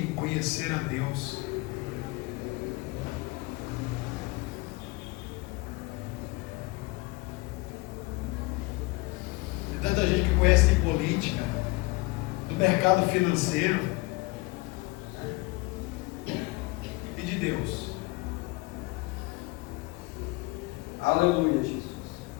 em conhecer a Deus. Tem tanta gente que conhece de política, do mercado financeiro, e de Deus. Aleluia, Jesus.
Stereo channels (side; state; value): right; quieter; 23.8 dB